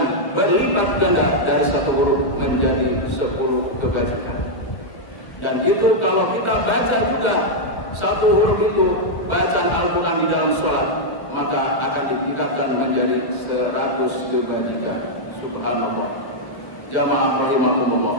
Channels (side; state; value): right; late; 1.2 ms